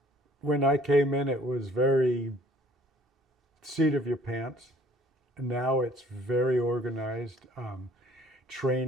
When I came in, it was very seat of your pants. And now it's very organized.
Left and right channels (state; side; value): normal; both; correlation 0.56